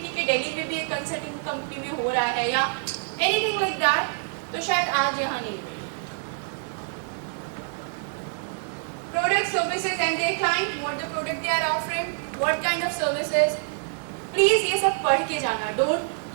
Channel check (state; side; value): silent; left; digital silence